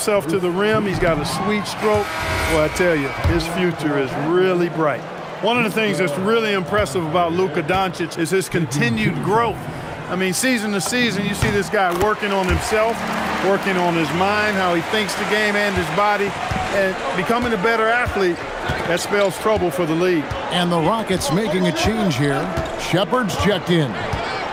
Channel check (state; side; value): identical; both; correlation 1.00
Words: to the rim. He's got a sweet stroke. Well, I tell you, his future is really bright. One of the things that's really impressive about Luka Doncic is his continued growth. I mean, season to season, you see this guy working on himself, working on his mind, how he thinks the game and his body, and becoming a better athlete. That spells trouble for the league. And the Rockets making a change here. Shepard's checked in.